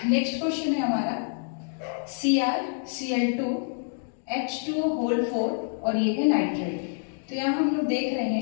नेक्स्ट क्वेश्चन है हमारा CrCl2 H2O होल 4 और ये है नाइट्रेट। तो यहाँ हम लोग देख रहे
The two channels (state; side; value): silent; right; digital silence